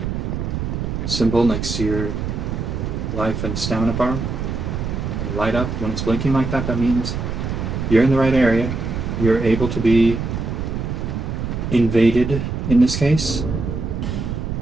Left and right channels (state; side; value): noise; right; rumble, 3 dB below the sound